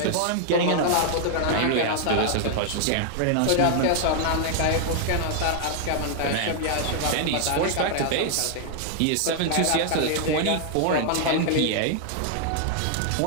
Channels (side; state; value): both; different; correlation 0.00